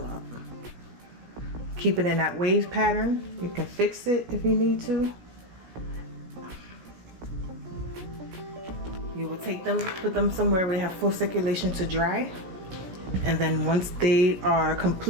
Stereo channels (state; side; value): late; left; 16 ms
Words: up. Keep it in that wave pattern. You can fix it if you need to. You will take them, put them somewhere where they have full circulation to dry. And then once they are